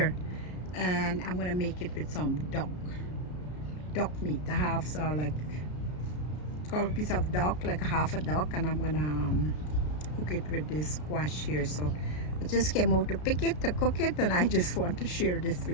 and I'm gonna make it with some duck meat. I have like a piece of duck, like half a duck, and I'm gonna cook it with this squash here. So I just came out to pick it, to cook it, and I just want to share this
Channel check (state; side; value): late; right; 33 ms